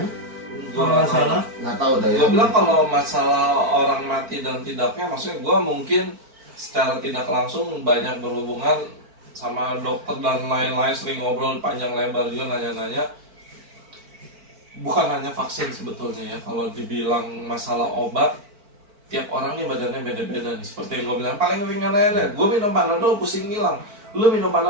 Gue Kalau nggak nggak tahu. salah. Nggak tahu dah ya. Gue bilang kalau masalah orang mati dan tidaknya, maksudnya gue mungkin secara tidak langsung banyak berhubungan sama dokter dan lain-lain, sering ngobrol panjang lebar juga nanya-nanya. Bukan hanya vaksin sebetulnya ya, kalau dibilang masalah obat, tiap orang nih badannya beda-beda nih. Seperti yang gue bilang, paling ringan aja, gue minum Panadol pusing hilang. Lu minum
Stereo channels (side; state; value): left; late; 4.5 ms